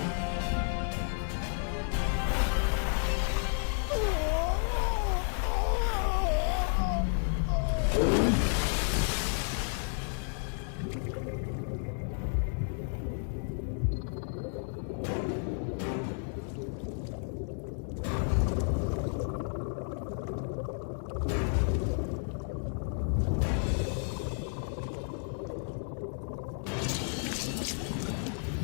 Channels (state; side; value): silent; right; 56 dB below the other